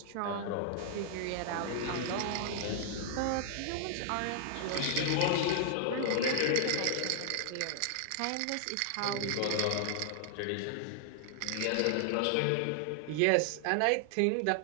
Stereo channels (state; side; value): different; both; correlation 0.00